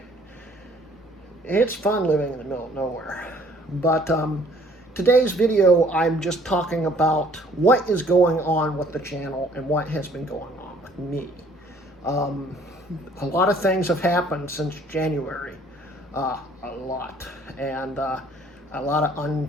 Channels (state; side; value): normal; both; correlation 0.58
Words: It's fun living in the middle of nowhere. But today's video, I'm just talking about what is going on with the channel and what has been going on with me. A lot of things have happened since January, a lot, and a lot of